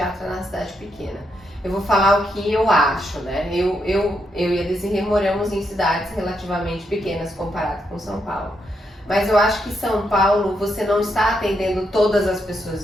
na cidade pequena. Eu vou falar o que eu acho, né? Eu e a Desirê moramos em cidades relativamente pequenas comparado com São Paulo. Mas eu acho que São Paulo, você não está atendendo todas as pessoas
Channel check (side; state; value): both; normal; correlation 0.80